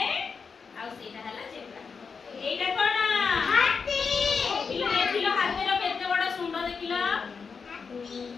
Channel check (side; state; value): right; quieter; 5.5 dB